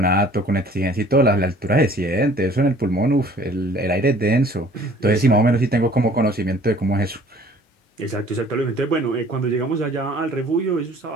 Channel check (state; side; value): normal; both; correlation 0.53